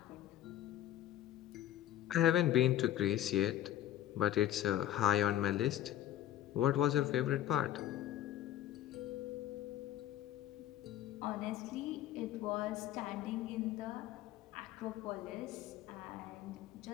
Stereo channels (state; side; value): quieter; right; 12.6 dB